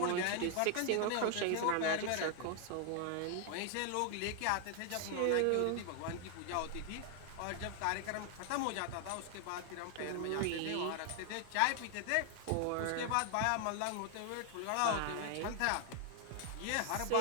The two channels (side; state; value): both; different; correlation 0.00